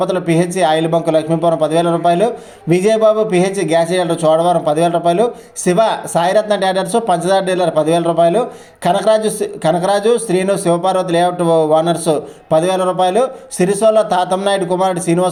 పిహెచ్ ఆయిల్ బంకు లక్ష్మీపురం 10,000 రూపాయలు, Vijaya Babu pH gas dealer Chodavaram 10,000 రూపాయలు, శివ సాయిరత్న డేటర్స్ పంచదార డీలర్ 10,000 రూపాయలు, కనకరాజు శ్రీను శివపార్వతి లేఅవుట్ ఓనర్స్ 10,000 రూపాయలు, సిరిసోల తాతంనాయుడు కుమారుడు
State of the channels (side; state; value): both; identical; correlation 1.00